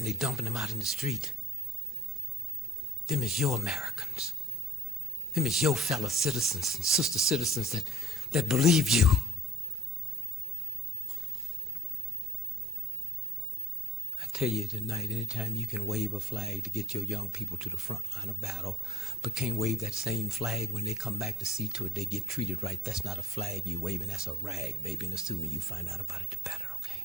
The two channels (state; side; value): normal; both; correlation 0.63